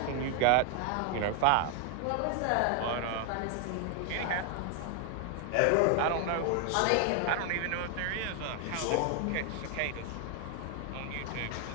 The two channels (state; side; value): different; both; correlation 0.00